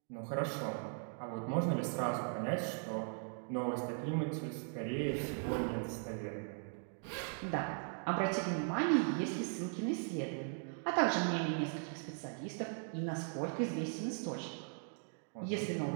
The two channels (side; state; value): left; silent; 52 dB below the other